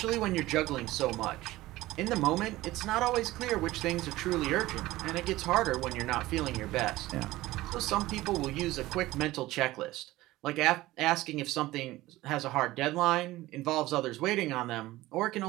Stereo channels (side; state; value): left; quieter; 17.6 dB